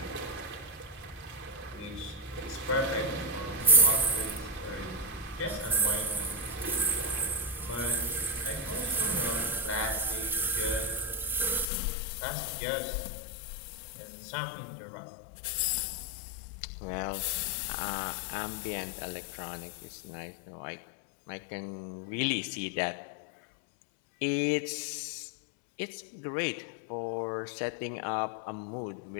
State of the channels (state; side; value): drops out; right; at 11.7 s